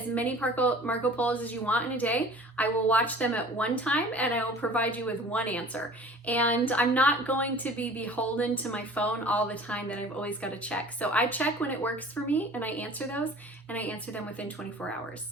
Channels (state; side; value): normal; both; correlation 0.45